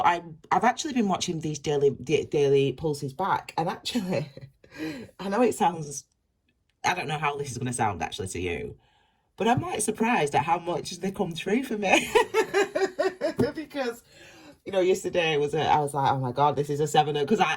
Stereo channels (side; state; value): both; identical; correlation 1.00